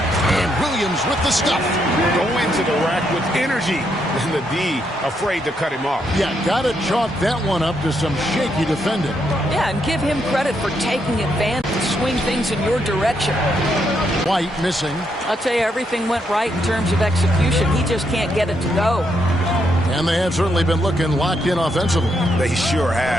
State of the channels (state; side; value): normal; both; correlation 0.77